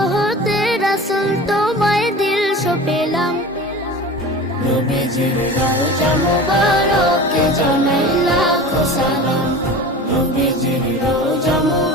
হতে রাসূল তোমায় দিল সপেলাম। নবীজির রওজা মুবারকে জানাই লাখো সালাম, নবীজির রওজা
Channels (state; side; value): normal; both; correlation 0.35